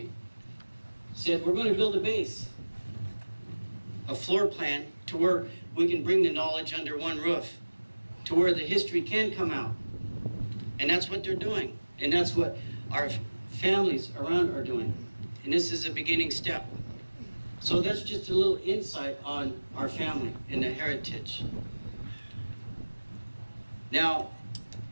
said, we're going to build a base, a floor plan to where we can bring the knowledge under one roof, to where the history can come out. And that's what they're doing. And that's what our families around are doing. And this is a beginning step. So that's just a little insight on our family and the heritage. Now,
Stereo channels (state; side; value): inverted; both; correlation -1.00